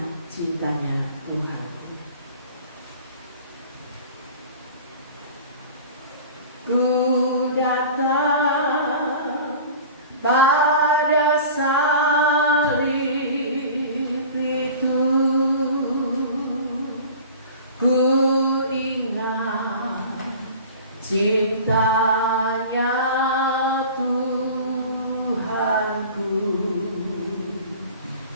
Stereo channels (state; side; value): inverted; both; correlation -0.40